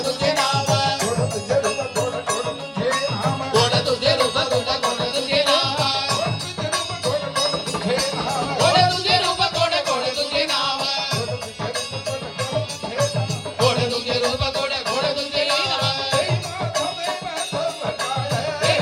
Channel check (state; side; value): identical; both; correlation 1.00